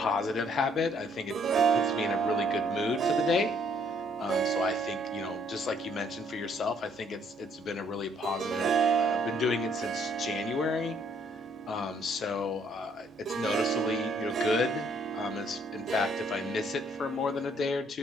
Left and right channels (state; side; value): normal; both; correlation 0.66